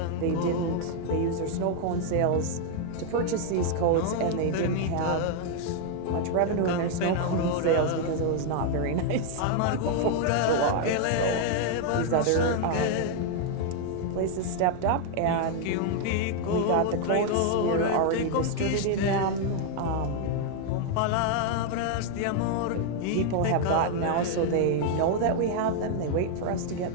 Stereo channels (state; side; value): different; both; correlation 0.00